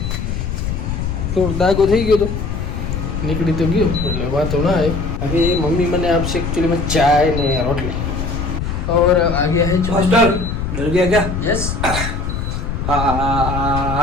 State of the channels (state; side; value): noise; left; rumble, 3 dB below the sound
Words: થોડો દાગો થઈ ગયો તો નીકળી તો ગયો એટલે વાતો ના આવે. अभी मम्मी मैंने आपसे एक्चुअली में चाय ने रोटली और आ गया है हॉस्टल. डर गया क्या? यस.